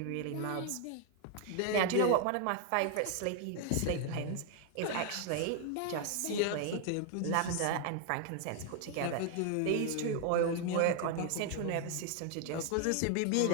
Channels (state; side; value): different; both; correlation 0.00